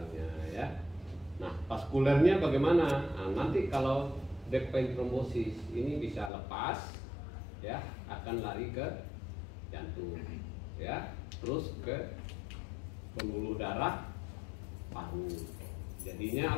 ya. Nah, vaskulernya bagaimana? Nah, nanti kalau deep vein thrombosis ini bisa lepas, ya, akan lari ke jantung, ya, terus ke pembuluh darah paru. Jadinya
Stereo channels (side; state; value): right; drops out; at 6.3 s